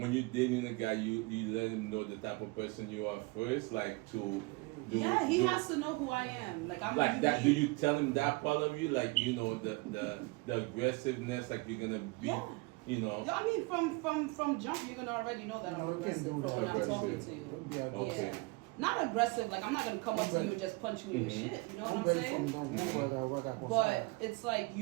you're dating a guy, you let him know the type of person you are first, like to do? Yeah, he has to know who I am. Like I'm Like that. Do unique. you tell him that part of you, like you know the aggressiveness, like you're gonna be, Yeah. you know? I mean, from jump, you're gonna already know that I'm No, you can't aggressive do from when that. I'm talking Aggressive. to you. Don't be Okay. Yeah. Not aggressive, like I'm not gonna come up to you and just punch you in your shit. You know what I'm saying? But it's like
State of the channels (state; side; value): quieter; left; 25.3 dB